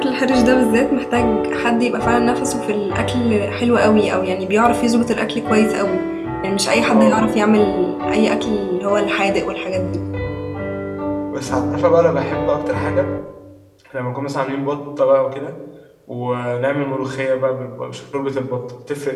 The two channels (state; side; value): identical; both; correlation 1.00